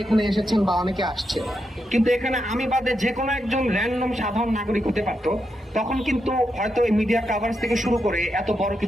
এখানে এসেছেন বা অনেকে আসছে, কিন্তু এখানে আমি বাদে যে কোনো একজন র্যান্ডম সাধারণ নাগরিক হতে পারত, তখন কিন্তু হয়তো এই মিডিয়া কাভারেজ থেকে শুরু করে এত বড়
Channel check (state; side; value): normal; both; correlation 0.84